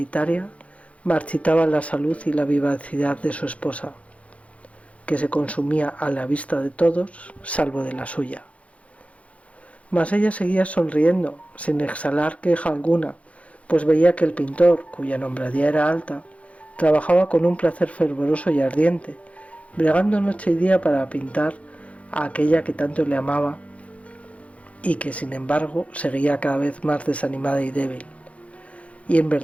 marchitaba la salud y la vivacidad de su esposa, que se consumía a la vista de todos, salvo de la suya. Mas ella seguía sonriendo, sin exhalar queja alguna, pues veía que el pintor, cuya nombradía era alta, trabajaba con un placer fervoroso y ardiente, bregando noche y día para pintar a aquella que tanto le amaba y que, sin embargo, seguía cada vez más desanimada y débil. Y en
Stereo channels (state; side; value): late; right; 0.064 ms